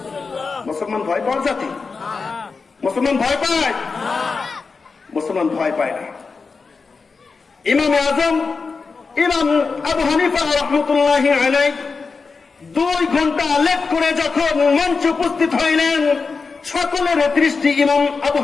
মুসলমান ভয় পাওয়ার জাতি? মুসলমান ভয় পায়? মুসলমান ভয় পায় না। ইমামে আজম ইমাম আবু হানিফা রহমতুল্লাহি আলাইহি 2 ঘন্টা লেট করে যখন মঞ্চে উপস্থিত হইলেন, সকলের দৃষ্টি ইমাম আবু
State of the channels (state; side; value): quieter; right; 4.7 dB